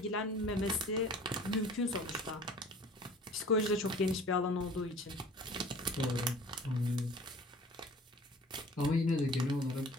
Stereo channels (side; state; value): both; normal; correlation 0.46